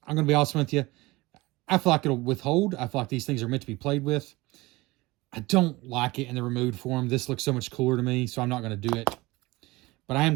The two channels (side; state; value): left; quieter; 21.3 dB